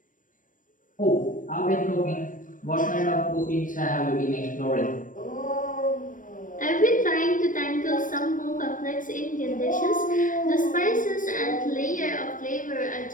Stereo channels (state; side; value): late; right; 0.38 ms